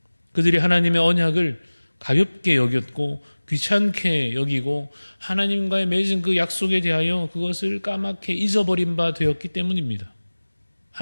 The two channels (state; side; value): inverted; both; correlation -1.00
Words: 그들이 하나님의 언약을 가볍게 여겼고 귀찮게 여기고 하나님과의 맺은 그 약속에 대하여 그것을 까맣게 잊어버린 바 되었기 때문입니다.